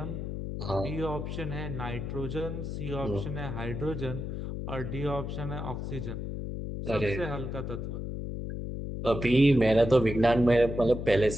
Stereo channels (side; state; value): left; noise; hum, 5 dB below the sound